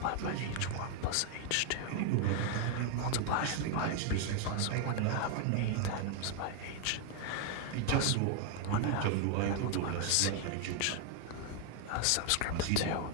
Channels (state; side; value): different; both; correlation 0.00